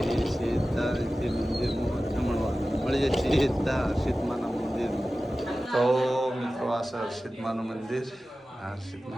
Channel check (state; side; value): normal; both; correlation 0.95